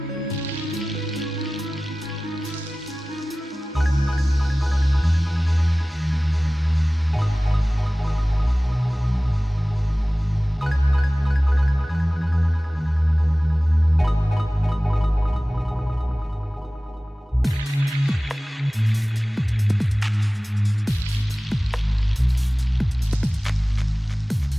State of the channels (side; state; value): both; normal; correlation 0.97